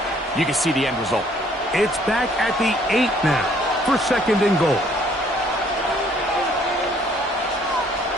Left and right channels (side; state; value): both; normal; correlation 0.62